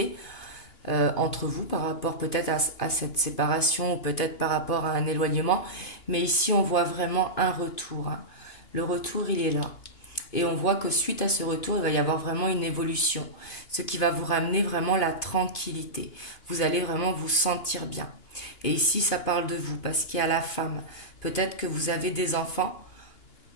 entre vous, par rapport peut-être à cette séparation, ou peut-être par rapport à un éloignement. Mais ici, on voit vraiment un retour, hein. Le retour, il est là. Et on voit que suite à ce retour, il va y avoir vraiment une évolution, ce qui va vous ramener vraiment la tranquillité. Vous allez vraiment vous sentir bien. Et ici, ça parle de vous, parce qu'il y a la femme. Peut-être que vous avez des enfants,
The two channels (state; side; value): late; right; 2.9 ms